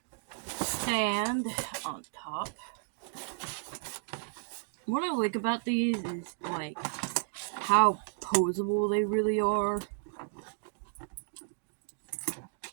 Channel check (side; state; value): left; silent; digital silence